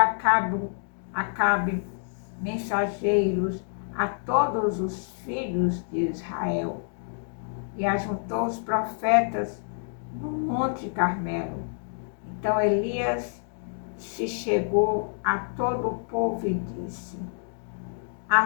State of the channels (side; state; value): right; silent; digital silence